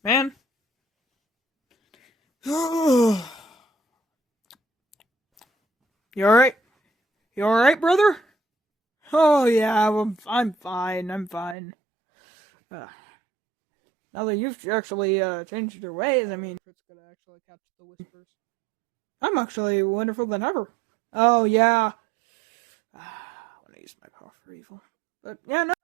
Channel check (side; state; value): left; drops out; at 11.6 s